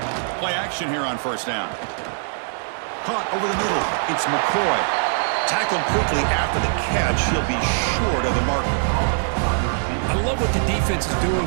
Play action here on 1st down. Caught over the middle. It's McCoy. Tackled quickly after the catch. He'll be short of the marker. I love what the defense is doing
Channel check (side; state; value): left; silent; digital silence